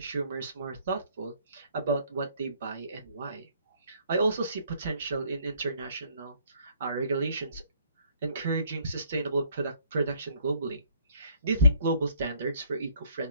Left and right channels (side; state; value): both; inverted; correlation -0.63